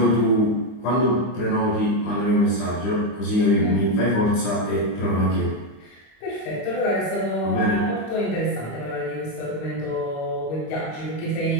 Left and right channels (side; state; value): right; late; 25 ms